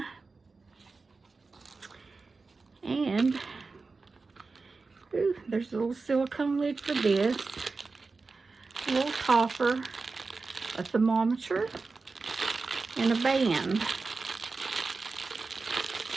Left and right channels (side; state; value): left; quieter; 4.1 dB